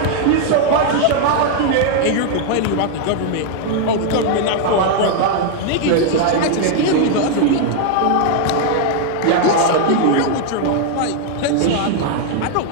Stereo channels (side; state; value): both; different; correlation 0.00